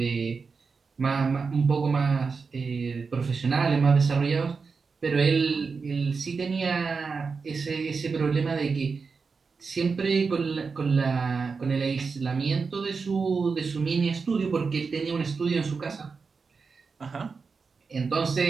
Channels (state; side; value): quieter; left; 4.9 dB